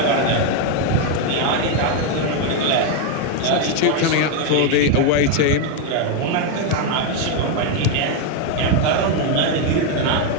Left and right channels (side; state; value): both; different; correlation 0.02